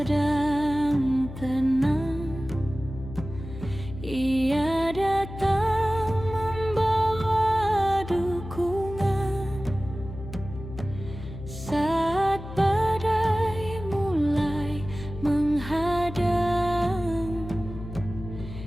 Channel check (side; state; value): left; noise; hum, 11 dB below the sound